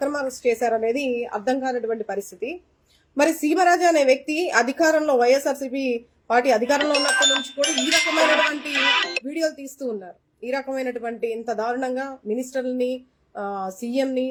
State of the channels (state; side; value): identical; both; correlation 1.00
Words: అరెస్ట్ చేశారా అనేది అర్థం కానటువంటి పరిస్థితి. మరి సీమరాజా అనే వ్యక్తి అధికారంలో, వైఎస్ఆర్సీపీ పార్టీ అధికారంలో ఉన్నప్పటి నుంచి కూడా ఈ రకమైనటువంటి వీడియోలు తీస్తూ ఉన్నారు. ఈ రకమైనటువంటి ఇంత దారుణంగా మినిస్టర్ని,